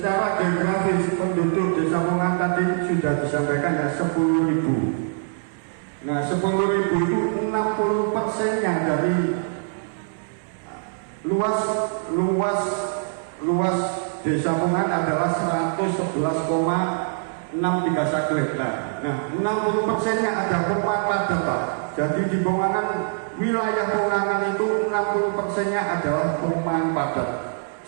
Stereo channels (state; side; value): silent; left; 63 dB below the other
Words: geografis penduduk Desa Pongaan tadi sudah disampaikan ya 10.000. Nah, 10.000 itu 60%-nya dari luas Desa Pongaan adalah 111,631 hektar. Nah, 60%-nya ada perumahan padat, Pak. Jadi di Pongaan, wilayah Pongaan itu 60%-nya adalah perumahan padat.